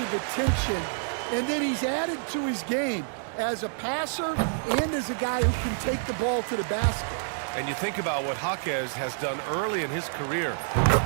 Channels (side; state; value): left; silent; digital silence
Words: attention, and then he's added to his game as a passer and as a guy who can take the ball to the basket. And you think about what Jaquez has done early in his career.